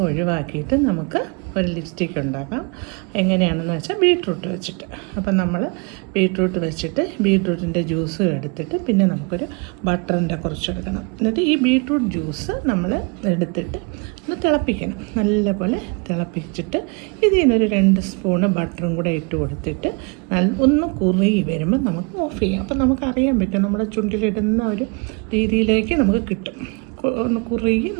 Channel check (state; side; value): quieter; left; 32.6 dB